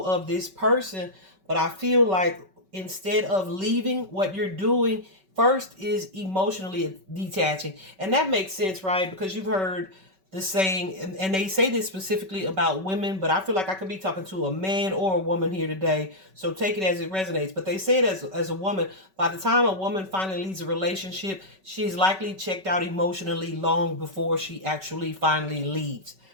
of this person. But I feel like instead of leaving, what you're doing first is emotionally detaching. And that makes sense, right? Because you've heard the saying, and they say this specifically about women, but I feel like I could be talking to a man or a woman here today, so take it as it resonates. But they say it as a woman, by the time a woman finally leaves a relationship, she's likely checked out emotionally long before she actually finally leaves,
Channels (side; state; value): left; late; 5.3 ms